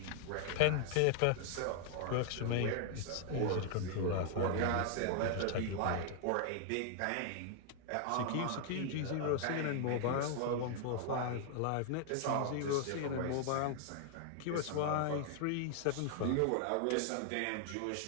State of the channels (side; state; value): both; different; correlation 0.00